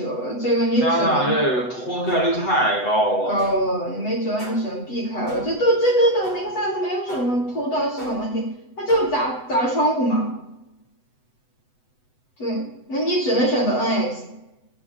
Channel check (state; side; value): late; right; 8.0 ms